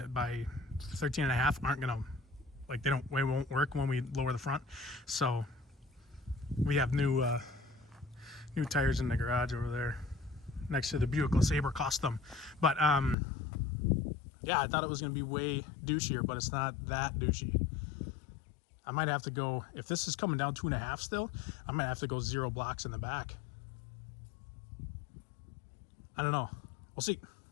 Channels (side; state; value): right; drops out; at 13.2 s